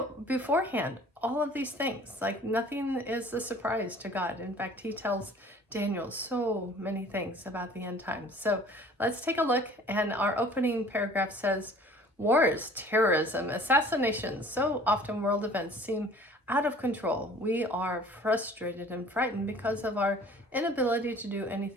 beforehand all of these things. Like nothing is a surprise to God. In fact, he tells Daniel so many things about the end times. So let's take a look. And our opening paragraph says, wars, terrorism, assassinations, so often world events seem out of control. We are frustrated and frightened because of our inability to do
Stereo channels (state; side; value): normal; both; correlation 0.50